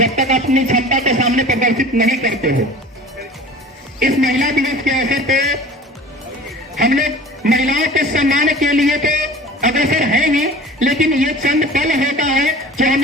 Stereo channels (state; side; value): normal; both; correlation 0.41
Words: तक अपनी क्षमता के सामने प्रदर्शित नहीं करते हो। इस महिला दिवस के अवसर पे हम लोग महिलाओं के सम्मान के लिए तो अग्रसर है ही, लेकिन ये चंद पल होता है जो